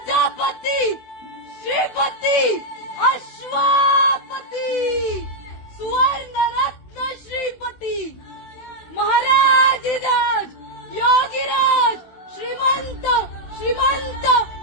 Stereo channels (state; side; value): late; right; 16 ms